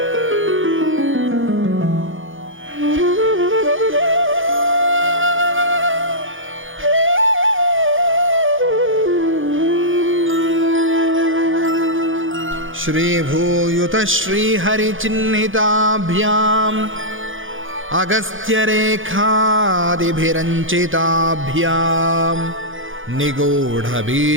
Shri Bhuyuta Shri Hari Chinnhitabhyam Agastya Rekhadi Bhiranchitabhyam Nigodha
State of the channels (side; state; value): left; late; 0.58 ms